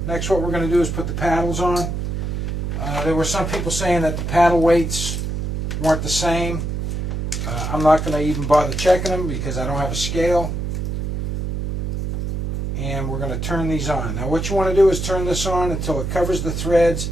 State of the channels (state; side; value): noise; right; hum, 2 dB below the sound